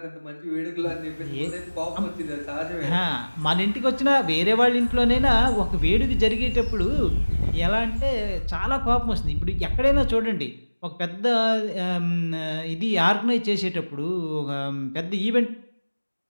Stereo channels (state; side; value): inverted; both; correlation -1.00